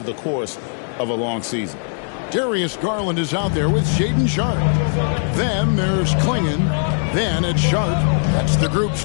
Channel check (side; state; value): right; silent; 57 dB below the other